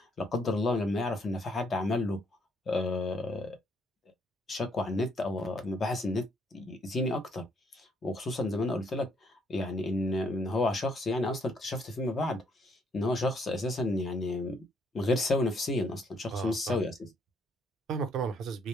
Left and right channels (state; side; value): normal; both; correlation 0.70